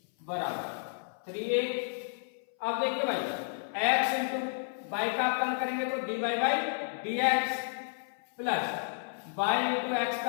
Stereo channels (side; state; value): right; silent; 57 dB below the other